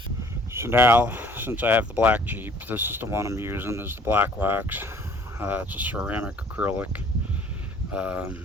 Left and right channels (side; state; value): both; normal; correlation 0.55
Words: so now, since I have the black Jeep, this is the one I'm using, is the black wax. It's a ceramic acrylic.